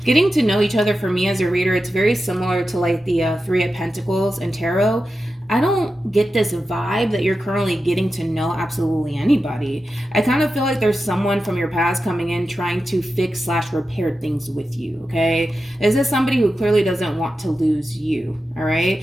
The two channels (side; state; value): both; normal; correlation 0.91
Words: getting to know each other for me as a reader, it's very similar to like the Three of Pentacles and Tarot. I don't get this vibe that you're currently getting to know absolutely anybody. I kind of feel like there's someone from your past coming in trying to fix / repair things with you, okay? Is this somebody who clearly doesn't want to lose you, all